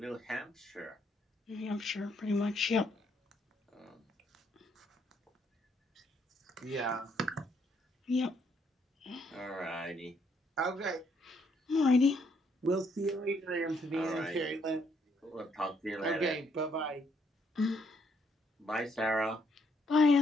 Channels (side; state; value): both; normal; correlation 0.71